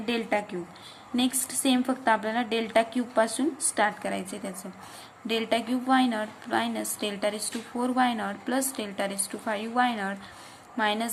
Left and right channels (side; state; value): both; identical; correlation 1.00